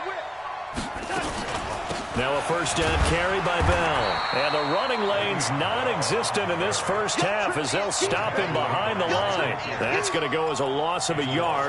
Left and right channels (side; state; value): both; identical; correlation 1.00